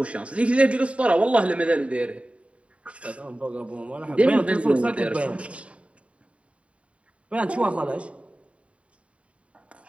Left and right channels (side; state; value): left; late; 0.063 ms